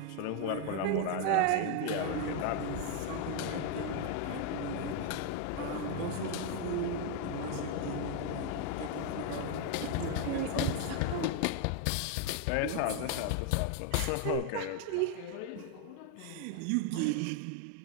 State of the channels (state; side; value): different; both; correlation 0.01